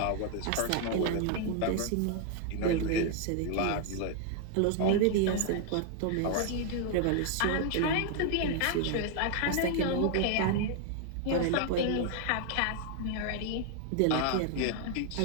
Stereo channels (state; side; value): different; both; correlation 0.00